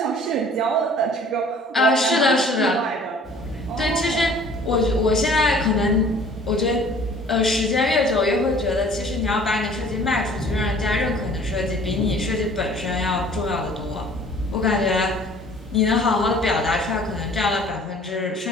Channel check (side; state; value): both; normal; correlation 0.51